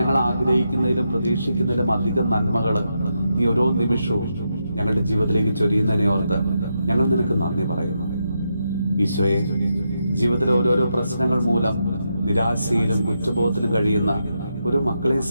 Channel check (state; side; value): inverted; both; correlation -0.84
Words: ആഗ്രഹിക്കുന്നതിലും പ്രതീക്ഷിക്കുന്നതിലും അധികം നന്മകൾ നീ ഓരോ നിമിഷവും ഞങ്ങളുടെ ജീവിതത്തിലേക്ക് ചൊരിയുന്നതിനെ ഓർത്ത് ഞങ്ങൾ നിനക്ക് നന്ദി പറയുന്നു. ഈശോയെ, ജീവിതത്തിലെ ഓരോരോ പ്രശ്നങ്ങൾ മൂലം നിരാശയിലും കുറ്റബോധത്തിലും കഴിയുന്ന ഓരോ മക്കളെയും